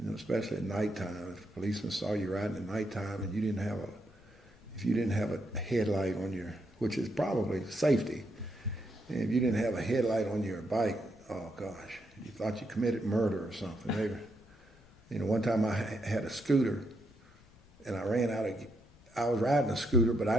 especially at nighttime, if a policeman saw you riding at nighttime and if you didn't have a headlight on your, which is probably safety, and if you didn't have a headlight on your bike, oh gosh, you thought you committed murder or something. One time I had a scooter, and I was riding a scooter, but I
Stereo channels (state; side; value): noise; left; rumble, 26 dB below the sound